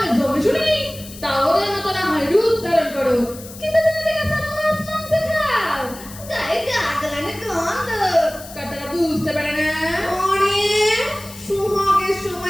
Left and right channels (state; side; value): noise; left; hiss, 16 dB below the sound